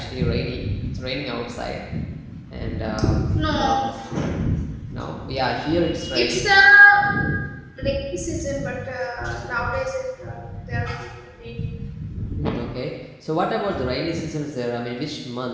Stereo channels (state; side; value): identical; both; correlation 1.00